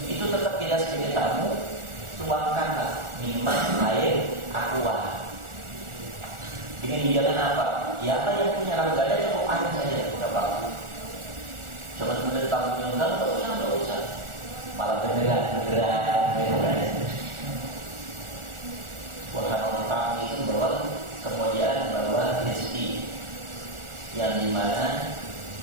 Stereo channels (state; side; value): late; left; 1.4 ms